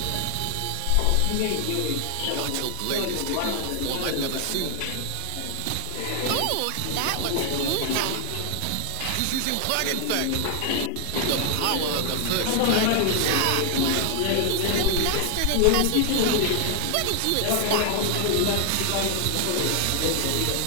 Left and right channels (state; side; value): different; both; correlation 0.00